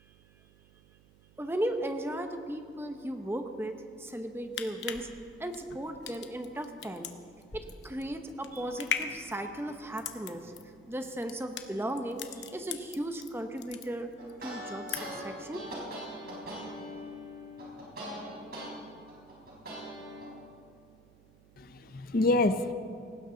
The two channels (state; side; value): noise; right; hum, 24 dB below the sound